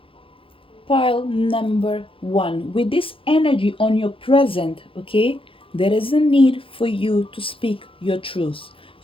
pile number 1, with this energy on your present, okay, there is a need for you to speak your truth.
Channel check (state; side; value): late; right; 0.26 ms